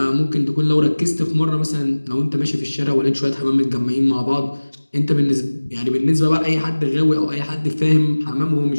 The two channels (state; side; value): inverted; both; correlation -1.00